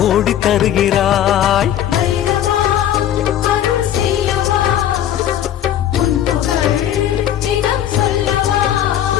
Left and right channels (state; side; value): quieter; right; 10.9 dB